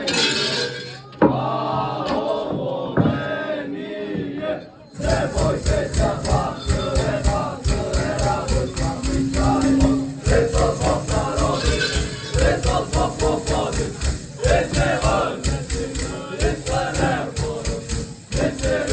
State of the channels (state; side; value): identical; both; correlation 1.00